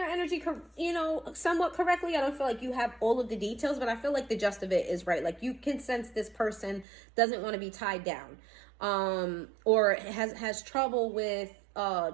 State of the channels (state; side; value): drops out; left; at 6.9 s